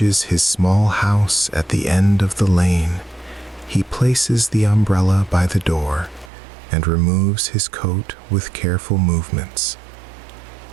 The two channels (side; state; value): left; drops out; at 6.3 s